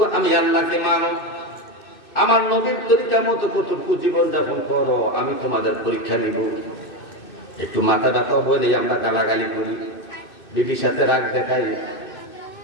আমি আল্লাহকে মানো। আমার নবীর পরীক্ষা মতো কতটুকু জীবনযাপন করো, আমি তোমাদের পরীক্ষা নিব। একটু মাথা ব্যথা হলে আমরা গালাগালি করি, বিবির সাথে রাগ দেখাই,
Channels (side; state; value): right; late; 2.6 ms